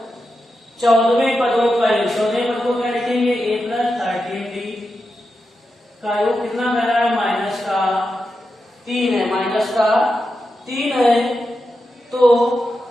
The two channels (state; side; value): normal; both; correlation 0.89